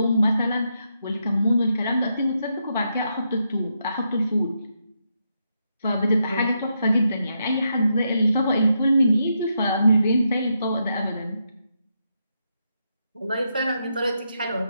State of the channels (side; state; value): both; inverted; correlation -0.81